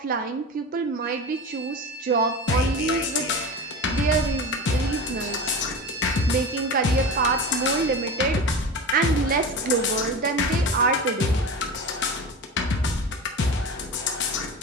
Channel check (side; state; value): both; normal; correlation 0.28